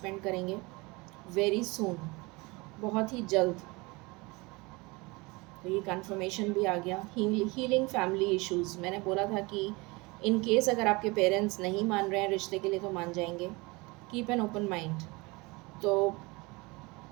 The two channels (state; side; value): quieter; left; 25.0 dB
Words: करेंगे वेरी सून, बहुत ही जल्द। तो ये कंफर्मेशन भी आ गया। हीलिंग फैमिली इश्यूज़, मैंने बोला था कि इन केस अगर आपके पेरेंट्स नहीं मान रहे हैं रिश्ते के लिए, तो मान जाएंगे। Keep an open mind. तो